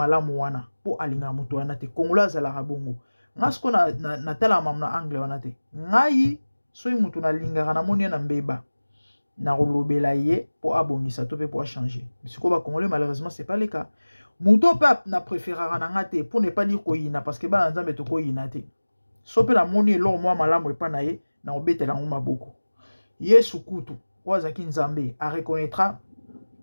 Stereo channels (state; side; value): inverted; both; correlation -1.00